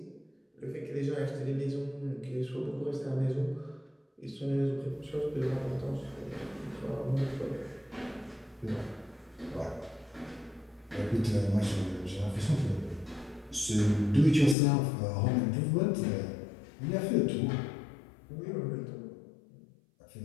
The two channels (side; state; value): right; drops out; at 14.6 s